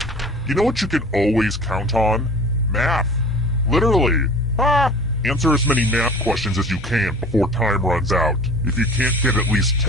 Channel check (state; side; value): normal; both; correlation 0.42